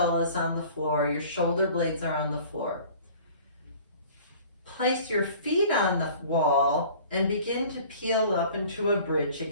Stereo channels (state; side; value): inverted; both; correlation -0.48